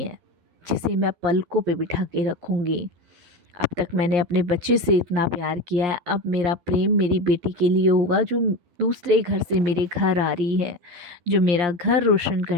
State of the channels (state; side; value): late; left; 12 ms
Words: जिसे मैं पलकों पे बिठा के रखूँगी। अब तक मैंने अपने बच्चे से इतना प्यार किया है, अब मेरा प्रेम मेरी बेटी के लिए होगा जो दूसरे घर से मेरे घर आ रही है, जो मेरा घर रोशन